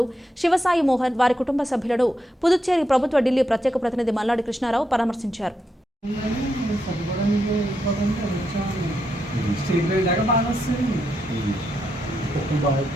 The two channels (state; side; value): normal; both; correlation 0.82